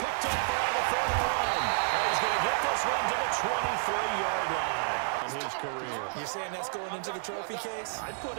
Picked up around the 31. And he's going to get this one to the 23-yard line in his career. You're saying that's going into the trophy case? I'd put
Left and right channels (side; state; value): left; silent; digital silence